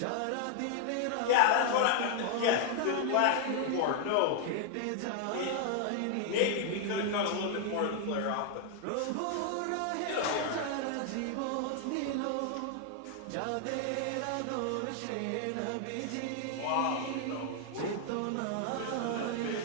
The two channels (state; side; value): different; both; correlation 0.00